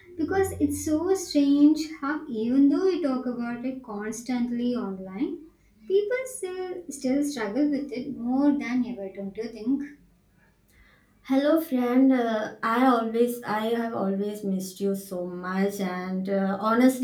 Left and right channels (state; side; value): identical; both; correlation 1.00